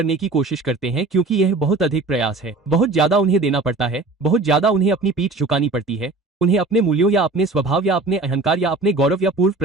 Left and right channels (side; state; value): left; quieter; 3.3 dB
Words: की कोशिश करते हैं, क्योंकि यह बहुत अधिक प्रयास है, बहुत ज्यादा उन्हें देना पड़ता है, बहुत ज्यादा उन्हें अपनी पीठ झुकानी पड़ती है, उन्हें अपने मूल्यों या अपने स्वभाव या अपने अहंकार या अपने गौरव या पूर्व